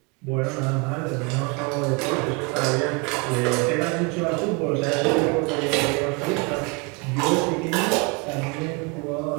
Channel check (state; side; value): quieter; left; 30.0 dB